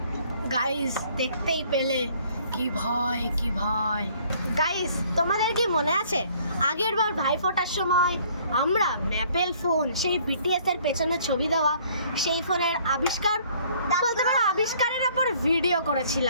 গাইস, দেখতেই পেলে কি ভয়, কি ভয়। গাইস, তোমাদের কি মনে আছে আগের বার ভাইফোঁটার সময় আমরা ম্যাপেল ফোন, সেই বিটিএস এর পেছনে ছবি দেওয়া সেই ফোনের আবিষ্কার বলতে পারো আবিষ্কারের উপর ভিডিও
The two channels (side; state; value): both; inverted; correlation -0.59